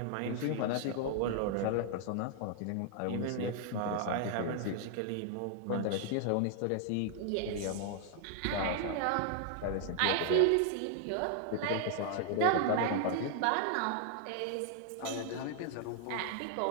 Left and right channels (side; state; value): both; different; correlation 0.00